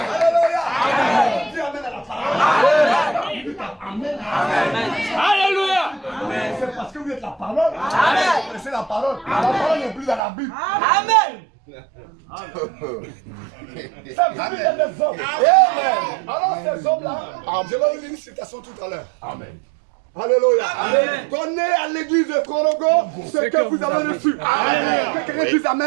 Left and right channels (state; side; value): drops out; left; at 10.2 s